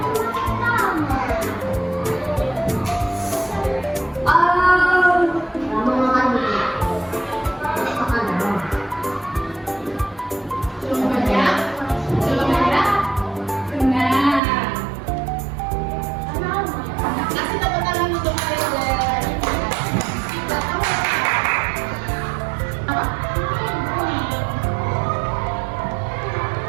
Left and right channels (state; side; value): drops out; left; at 14.4 s